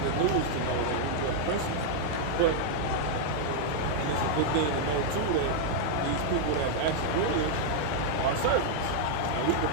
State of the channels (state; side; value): different; both; correlation -0.01